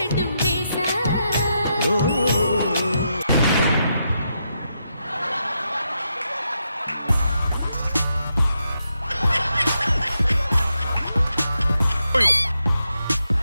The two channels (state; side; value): inverted; both; correlation -0.83